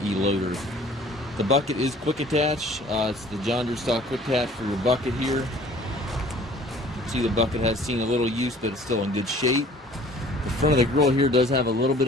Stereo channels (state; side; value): normal; both; correlation 0.51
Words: loader. The bucket is quick attach. It's the John Deere style quick attach for your bucket here. You can see the bucket has seen a little use, but it's still in good shape. The front of the grill here does have a little bit